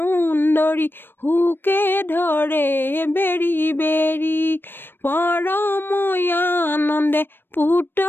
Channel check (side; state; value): right; late; 0.098 ms